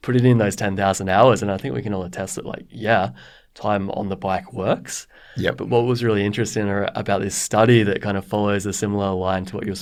Put it in those 10,000 hours. And I think we can all attest that, time on the bike works. Yep. But what was really interesting about this study that kind of follows a similar line to what you're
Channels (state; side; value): identical; both; correlation 1.00